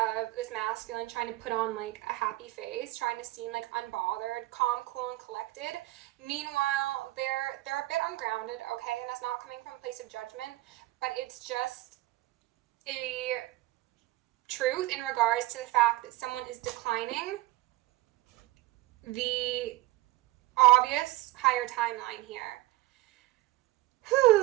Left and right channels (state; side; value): quieter; left; 18.4 dB